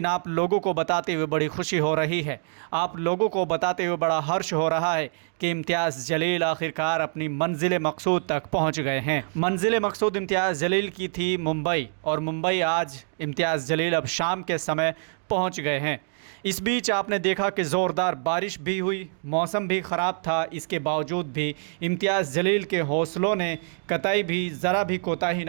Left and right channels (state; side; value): silent; left; 61 dB below the other